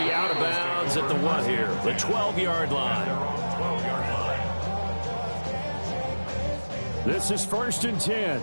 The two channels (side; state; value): both; inverted; correlation -1.00